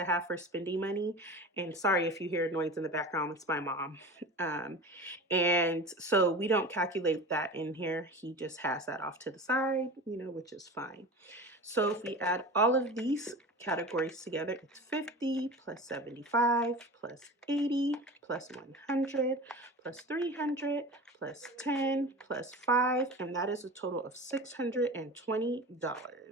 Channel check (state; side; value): normal; both; correlation 0.33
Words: have for spending money. And sorry if you hear noise in the background, it's my mom. And so we don't calculate that in here. He just has that off to the side, which is fine. So if we add all of these categories together, it's 50 plus 75 plus 80 plus 100 plus 300 plus 10 plus 5, and that is a total of